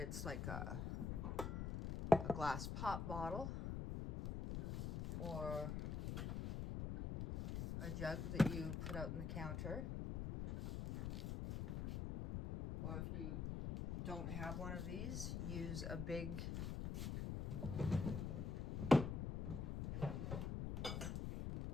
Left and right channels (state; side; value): noise; left; rumble, 2 dB below the sound